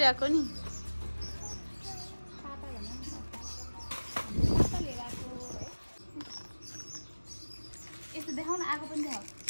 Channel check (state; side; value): inverted; both; correlation -1.00